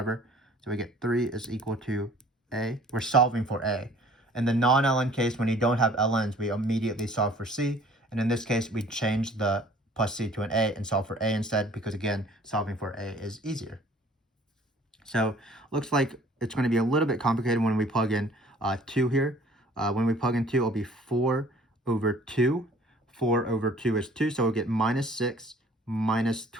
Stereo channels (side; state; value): both; normal; correlation 0.53